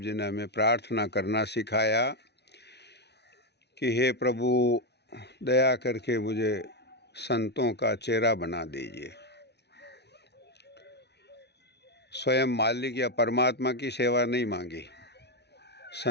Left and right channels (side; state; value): right; late; 0.49 ms